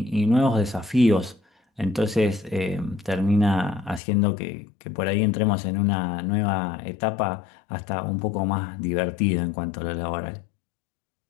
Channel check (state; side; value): drops out; right; at 4.0 s